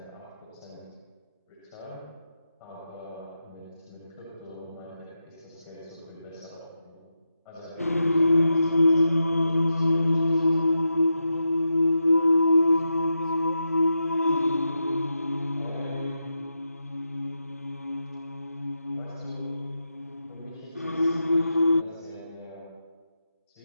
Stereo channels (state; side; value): inverted; both; correlation -0.88